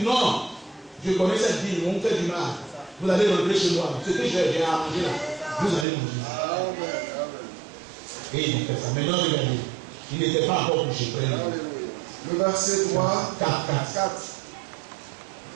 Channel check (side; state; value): left; drops out; at 5.9 s